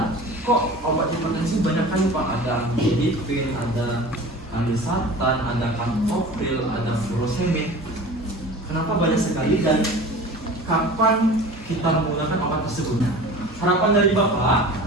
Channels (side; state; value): both; normal; correlation 0.39